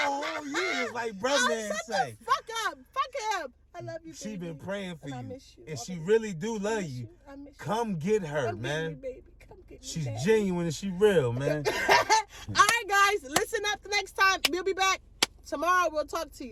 years, like brother man say. Fuck him. I love you, baby. She been praying for you. I miss you. And she really do love you. Come get her, man. Get me, baby. Come get me, She's genuine and she real, man. All right, guys. Listen up the next time. We'll be back tomorrow. We'll talk to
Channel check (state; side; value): identical; both; correlation 1.00